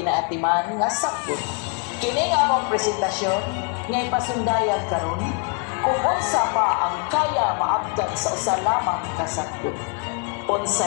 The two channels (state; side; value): quieter; right; 35.4 dB